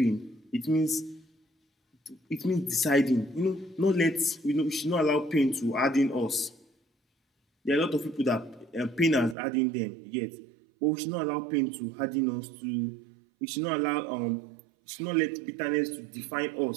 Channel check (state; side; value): drops out; left; at 9.3 s